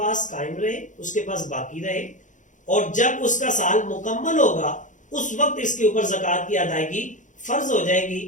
قائم رہے، اس کے پاس باقی رہے، اور جب اس کا سال مکمل ہوگا اس وقت اس کے اوپر زکوٰۃ کی ادائیگی فرض ہو جائے گی،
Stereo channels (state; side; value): late; right; 0.36 ms